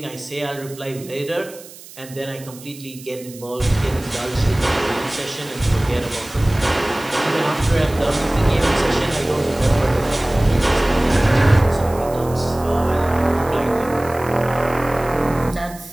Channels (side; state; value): right; noise; hiss, 18 dB below the sound